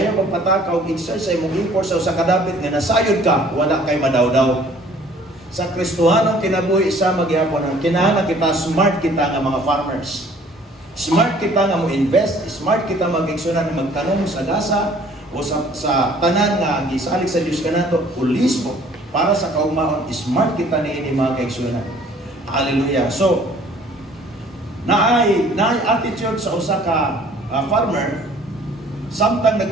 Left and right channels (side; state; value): both; normal; correlation 0.55